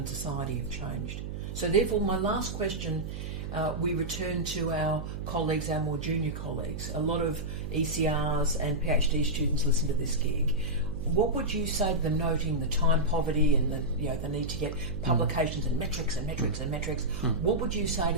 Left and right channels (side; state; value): right; noise; hum, 7 dB below the sound